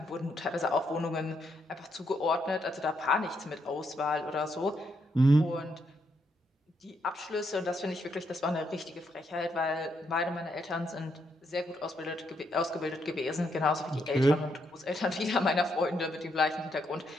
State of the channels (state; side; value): normal; both; correlation 0.77